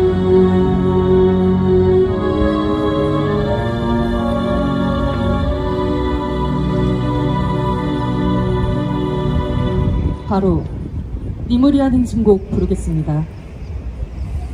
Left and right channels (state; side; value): identical; both; correlation 1.00